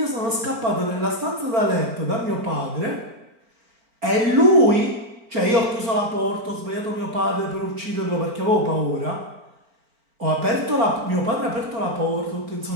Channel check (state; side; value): late; left; 4.4 ms